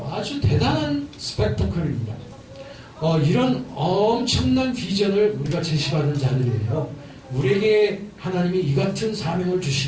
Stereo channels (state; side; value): identical; both; correlation 1.00